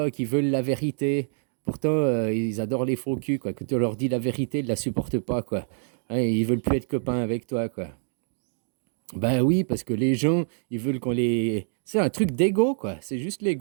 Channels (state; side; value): silent; left; digital silence